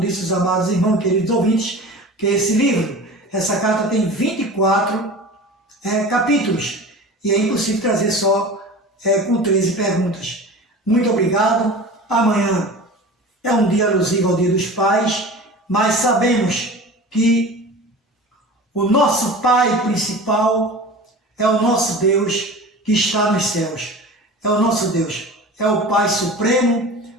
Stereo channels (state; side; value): normal; both; correlation 0.36